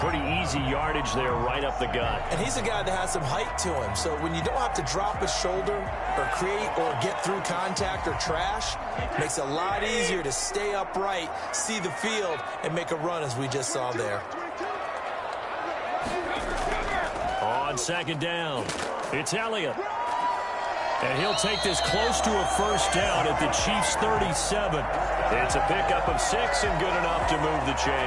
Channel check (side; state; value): both; identical; correlation 1.00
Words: easy yardage there right up the gut. And he's a guy that has some height to him. So when you don't have to drop his shoulder or create or get through contact or trash, it makes it a lot easier to stay upright, see the field, and make a run as we just saw there. On 2nd down, it's Elliott. And he'll take this close to a 1st down at the Chiefs' 37. It's a pickup of 6 and good enough to move the